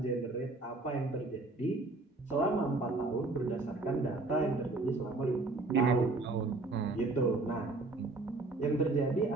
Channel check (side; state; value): left; quieter; 3.3 dB